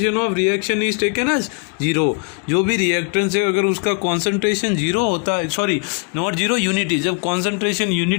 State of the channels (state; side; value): quieter; right; 35.0 dB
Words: reaction is taken as 0। जो भी रिएक्टेंस है अगर उसका कॉन्सेंट्रेशन 0 होता है, सॉरी नॉट 0, यूनिटी, जब कॉन्सेंट्रेशन